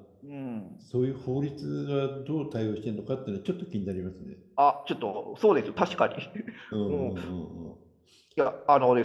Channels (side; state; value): both; identical; correlation 1.00